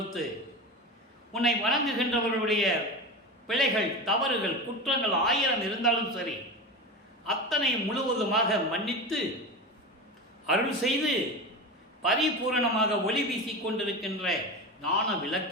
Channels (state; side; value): normal; both; correlation 0.25